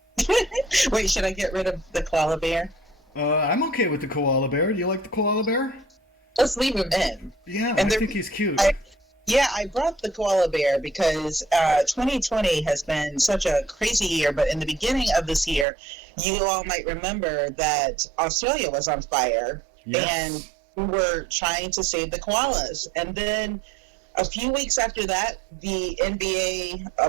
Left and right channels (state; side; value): drops out; left; at 15.7 s